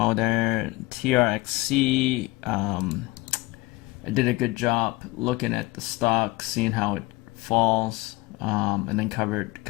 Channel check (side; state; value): right; quieter; 21.7 dB